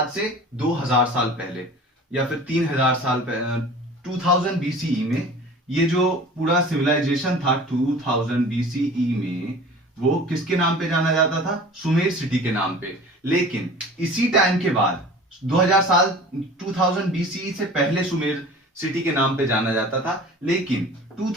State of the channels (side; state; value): both; normal; correlation 0.42